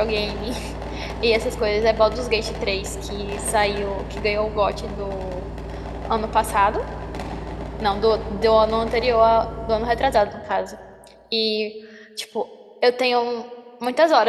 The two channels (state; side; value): identical; both; correlation 1.00